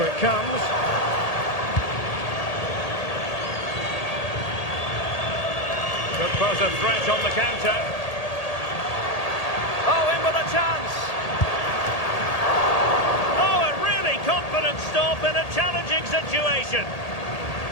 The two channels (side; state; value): right; late; 1.8 ms